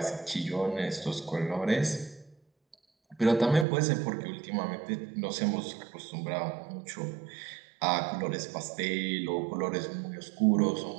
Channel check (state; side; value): drops out; left; at 3.7 s